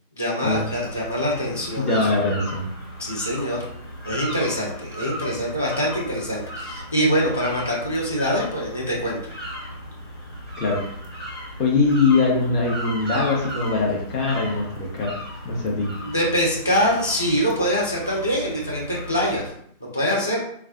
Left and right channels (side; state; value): both; inverted; correlation -0.36